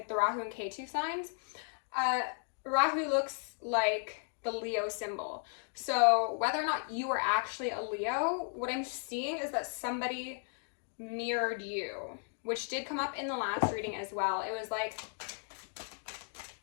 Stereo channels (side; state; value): right; silent; 54 dB below the other